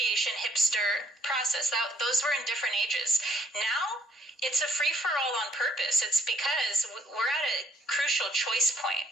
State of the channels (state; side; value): normal; both; correlation 0.63